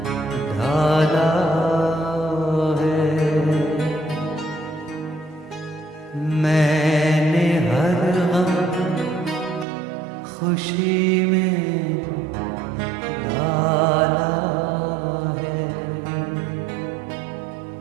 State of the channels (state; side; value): drops out; left; at 9.7 s